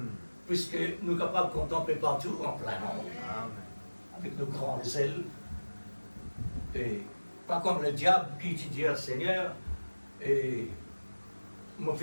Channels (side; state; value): both; inverted; correlation -1.00